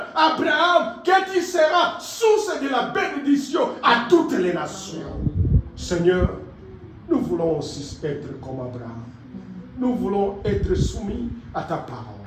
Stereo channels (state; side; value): identical; both; correlation 1.00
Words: Abraham, que tu seras source de la bénédiction à toutes les nations. Seigneur, nous voulons aussi être comme Abraham. Nous voulons être soumis à ta parole.